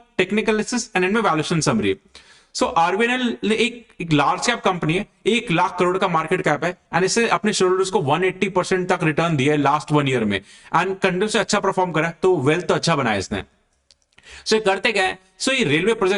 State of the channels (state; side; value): identical; both; correlation 1.00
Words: technical analysis and end में वैल्यूएशन समरी। सो आरबीएनएल एक लार्ज कैप कंपनी है, 1 लाख करोड़ का मार्केट कैप है एंड इसे अपने शेयर होल्डर्स को 180% तक रिटर्न दिया है लास्ट 1 ईयर में एंड कंटिन्यू से अच्छा परफॉर्म करा, तो वेल्थ तो अच्छा बनाया इसने। सो ये करते क्या है? सो ये रेलवे